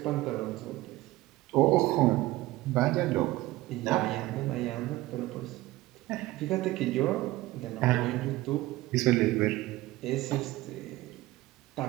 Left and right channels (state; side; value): quieter; left; 18.0 dB